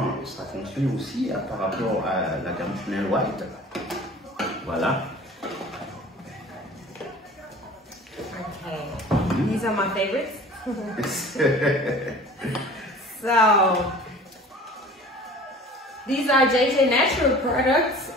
ça fonctionne aussi par rapport à la gamme Chanel White. Voilà. Okay, these are my favorites. So, these are JJ Natural products,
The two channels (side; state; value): both; normal; correlation 0.44